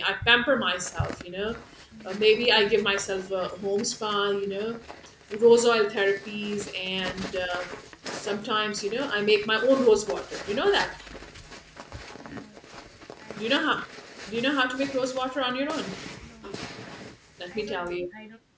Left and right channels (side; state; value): both; identical; correlation 1.00